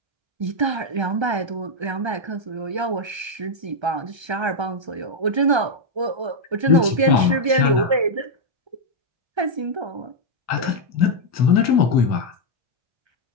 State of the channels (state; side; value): late; left; 1.3 ms